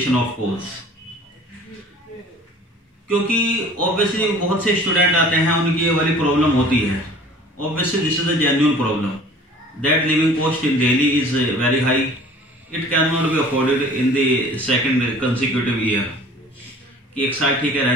of course? क्योंकि obviously बहुत से student आते हैं, उनकी ये वाली problem होती है। Obviously this is a genuine problem that living cost in Delhi is very high. It cannot be afforded in the second consecutive year. कि एक साल ठीक है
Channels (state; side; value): normal; both; correlation 0.47